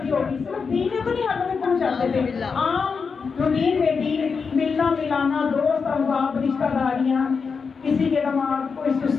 دی ہوگی. صرف دین میں تو نہیں ہمیں پہنچاتے تھے، عام روٹین میں دین، ملنا ملانا، دوست احباب، رشتہ داریاں، کسی کے دماغ کوئی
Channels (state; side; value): quieter; right; 5.4 dB